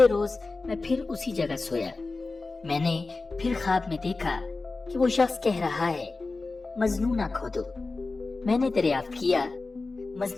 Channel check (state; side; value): quieter; right; 3.7 dB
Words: روز میں پھر اسی جگہ سویا۔ میں نے پھر خواب میں دیکھا کہ وہ شخص کہہ رہا ہے مجنونہ کھودو۔ میں نے دریافت کیا